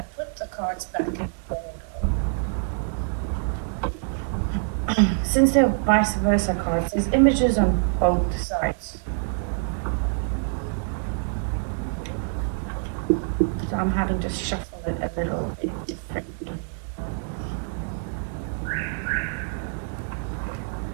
put the cards back in order. Since they're vice versa cards, there's images on both sides. So I'm having to shuffle it a little bit differently.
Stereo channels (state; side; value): silent; left; 61 dB below the other